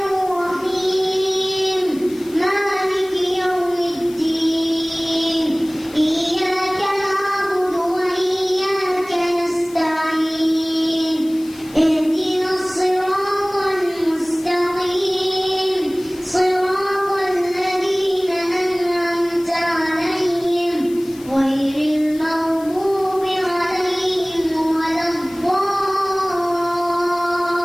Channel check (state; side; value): noise; left; hiss, 21 dB below the sound